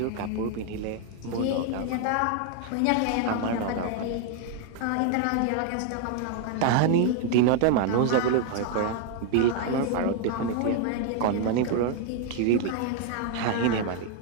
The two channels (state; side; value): different; both; correlation 0.01